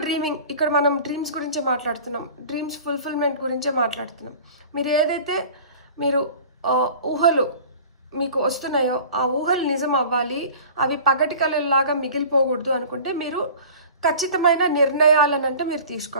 dreaming. ఇక్కడ మనం డ్రీమ్స్ గురించే మాట్లాడుతున్నాం, డ్రీమ్స్ ఫుల్ఫిల్మెంట్ గురించే మాట్లాడుతున్నాం. మీరు ఏదైతే మీరు ఊహలు మీకు వస్తున్నాయో ఆ ఊహలు నిజం అవ్వాలి, అవి పగటి కళలాగా మిగిలిపోకూడదు అనుకుంటే మీరు ఖచ్చితమైన నిర్ణయాలనంటే మీరు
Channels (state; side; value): inverted; both; correlation -0.42